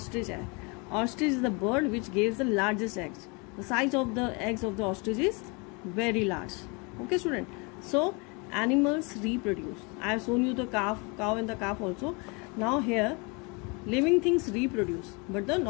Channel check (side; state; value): right; quieter; 30.4 dB